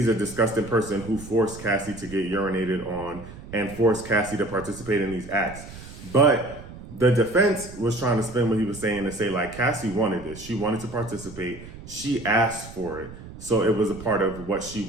a disgusting person who forced Cassie to get urinated on and forced Cassie to participate in these acts. But the defense was trying to spin what he was saying to say like, Cassie wanted this. She wanted to participate. She asked for it. So it was a part of what she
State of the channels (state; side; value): noise; right; rumble, 15 dB below the sound